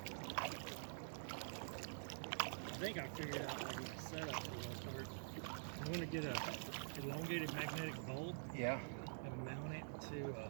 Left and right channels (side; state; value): left; silent; digital silence